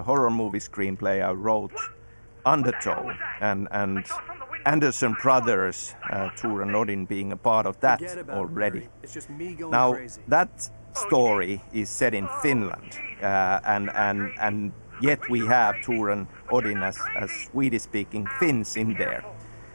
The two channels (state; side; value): inverted; both; correlation -1.00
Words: horror movie screenplay I wrote, Undertow, and Anderson Brothers, Tor and Odin being a part of that already. Now, that story is set in Finland, and yet we have Tor and Odin as Swedish-speaking Finns in there.